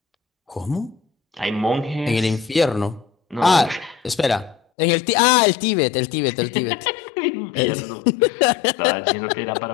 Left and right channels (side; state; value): right; drops out; at 4.6 s